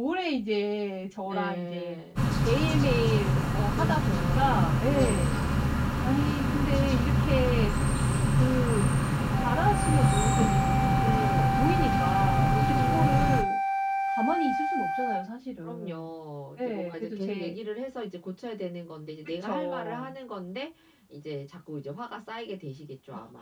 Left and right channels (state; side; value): identical; both; correlation 1.00